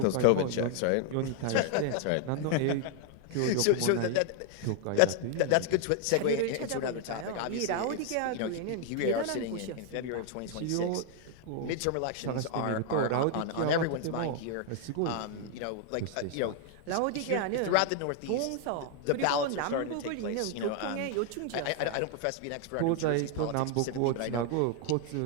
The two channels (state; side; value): different; both; correlation 0.00